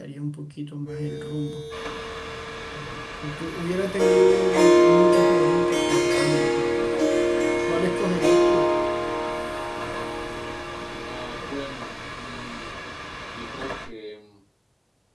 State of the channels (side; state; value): both; identical; correlation 1.00